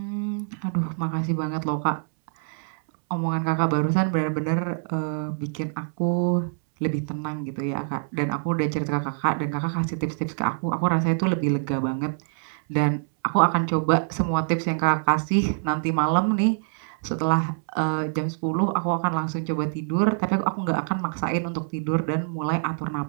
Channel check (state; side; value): silent; left; 62 dB below the other